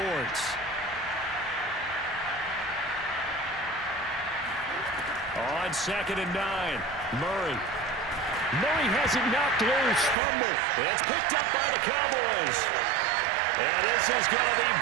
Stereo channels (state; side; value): drops out; left; at 10.2 s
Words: On 2nd and 9, Murray has it knocked loose. Fumble. It's picked up by the Cowboys. And this is going to be